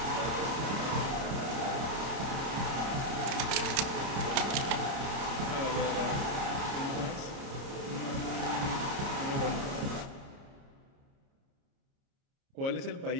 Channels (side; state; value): left; late; 30 ms